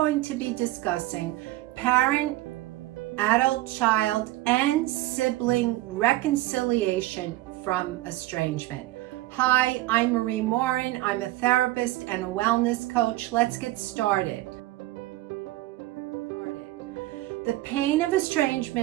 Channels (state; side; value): quieter; left; 17.4 dB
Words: to be discussing parent, adult, child, and sibling reconciliation from estrangement. Hi, I'm Marie Morin. I'm a therapist and a wellness coach. Let's get started. The pain of